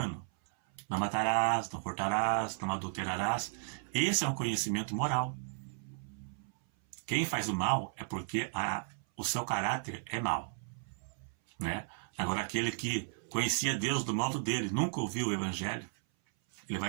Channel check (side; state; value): left; silent; 55 dB below the other